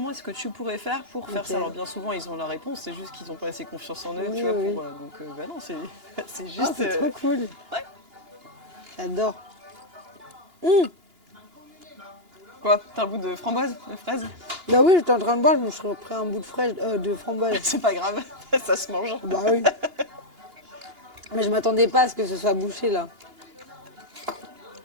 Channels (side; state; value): left; late; 2.9 ms